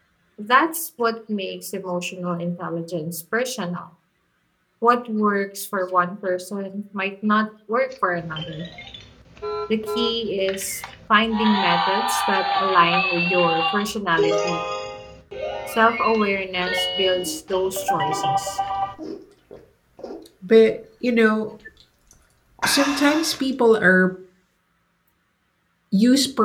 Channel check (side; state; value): both; identical; correlation 1.00